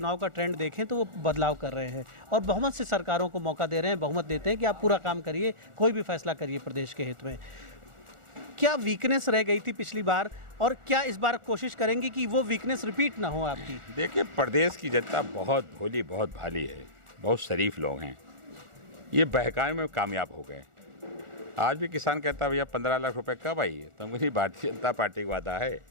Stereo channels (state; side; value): late; left; 1.4 ms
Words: का ट्रेंड देखें तो वो बदलाव कर रहे हैं और बहुमत से सरकारों को मौका दे रहे हैं, बहुमत देते हैं कि आप पूरा काम करिए, कोई भी फैसला करिए प्रदेश के हित में। क्या वीकनेस रह गई थी पिछली बार, और क्या इस बार कोशिश करेंगे कि वो वीकनेस रिपीट ना हो आपकी? देखिए, प्रदेश की जनता बहुत भोली, बहुत भाली है, बहुत शरीफ लोग हैं। ये बहकाने में कामयाब हो गए। आज भी किसान कहता भैया 15 लाख रुपए कब आई है, तो मुझे भारतीय जनता पार्टी का वादा है।